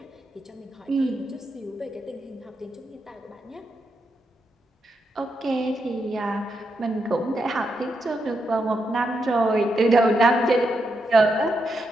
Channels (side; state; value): both; normal; correlation 0.83